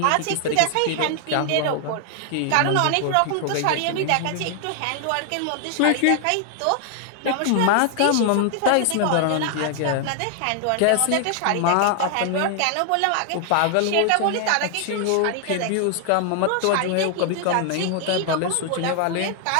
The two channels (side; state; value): both; different; correlation 0.00